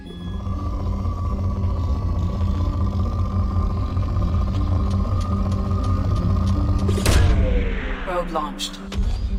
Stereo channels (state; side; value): identical; both; correlation 1.00